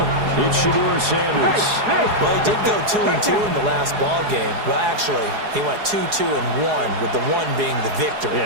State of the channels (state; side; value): late; left; 4.8 ms